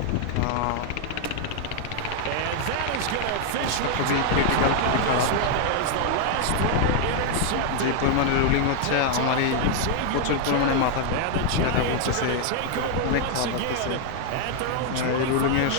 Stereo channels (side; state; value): both; different; correlation 0.00